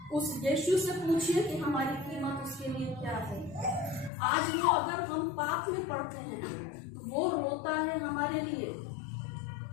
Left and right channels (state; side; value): drops out; right; at 4.1 s